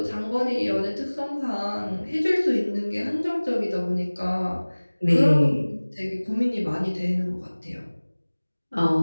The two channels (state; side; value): inverted; both; correlation -1.00